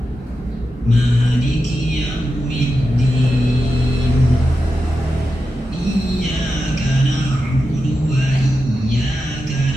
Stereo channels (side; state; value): both; normal; correlation 0.90